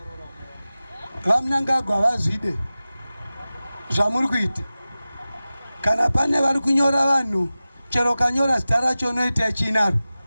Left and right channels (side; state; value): both; inverted; correlation -0.96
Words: vaMnangagwa vazvide zvamuri kuita. Kana pane vari kunyora vanhu chero kanyora zita racho unoita chinaro